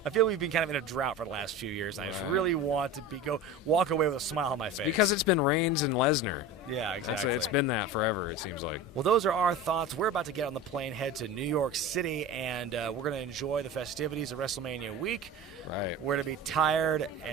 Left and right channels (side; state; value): both; normal; correlation 0.32